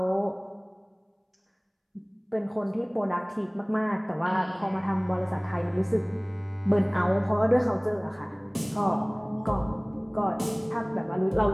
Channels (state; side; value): identical; both; correlation 1.00